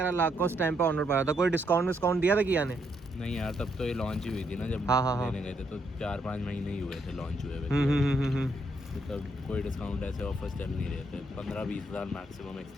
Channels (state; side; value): normal; both; correlation 0.75